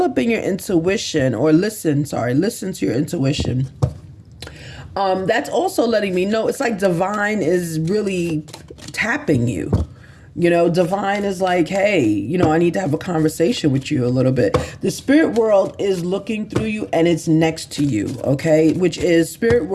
your intuition, or listen to your intuition. That's also letting me know it's like divine is really tapping you. Divine is like, hey, I need to have a conversation with you a little bit. The spirit world is looking through you and it's next to you, okay? Which is spirit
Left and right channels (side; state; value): both; identical; correlation 1.00